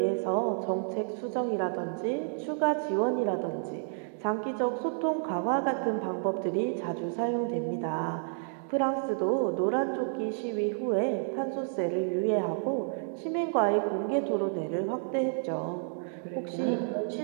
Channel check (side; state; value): left; silent; digital silence